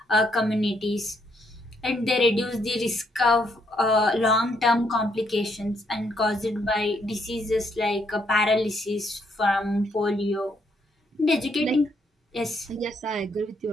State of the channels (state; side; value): normal; both; correlation 0.73